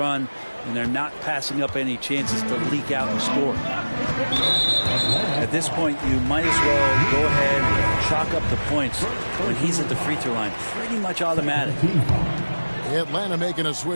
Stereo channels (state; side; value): inverted; both; correlation -1.00